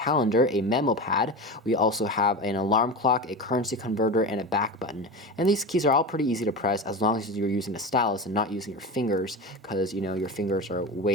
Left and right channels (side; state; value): both; normal; correlation 0.25